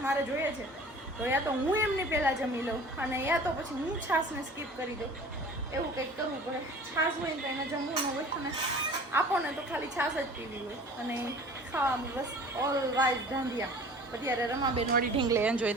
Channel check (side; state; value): both; normal; correlation 0.45